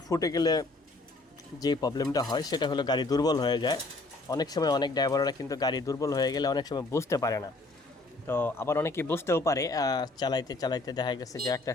ফুটে গেলে যে প্রবলেমটা হয় সেটা হলো গাড়ি দুর্বল হয়ে যায়। অনেক সময় অনেক ড্রাইভাররা কিন্তু গাড়ি দুর্বল হয়ে গেলে অনেক সময় বুঝতে পারে না। তো আবার অনেকেই বুঝতেও পারে, চালাইতে চালাইতে দেখা গেছে যে একটা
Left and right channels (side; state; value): right; quieter; 3.1 dB